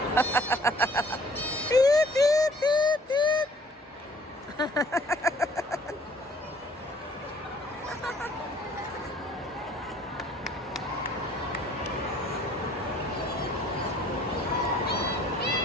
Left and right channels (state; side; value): normal; both; correlation 0.57